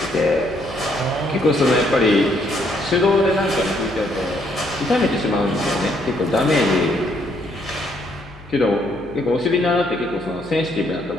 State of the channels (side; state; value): left; noise; hum, 21 dB below the sound